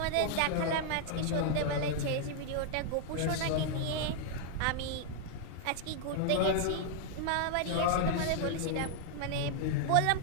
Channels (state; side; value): different; both; correlation 0.00